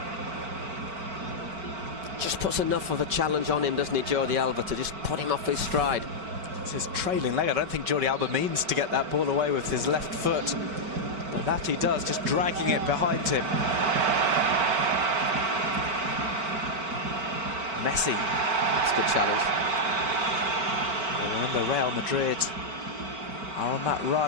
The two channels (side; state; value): left; late; 5.3 ms